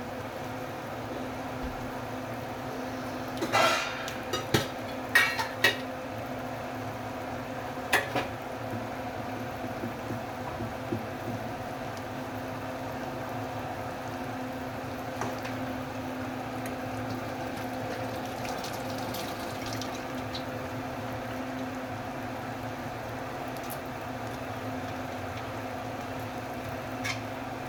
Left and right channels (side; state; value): both; identical; correlation 1.00